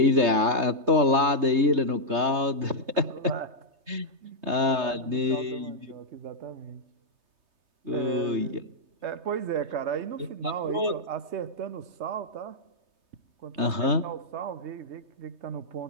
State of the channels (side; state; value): left; late; 3.2 ms